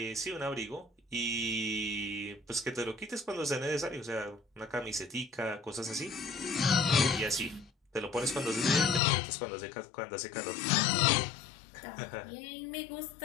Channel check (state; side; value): drops out; right; at 9.0 s